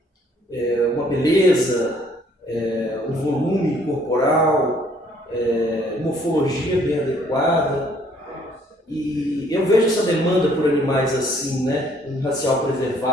uma beleza, um volume corporal, morfologia bem adequada. E eu vejo essa demanda por animais assim, né, um racial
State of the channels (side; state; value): both; normal; correlation 0.62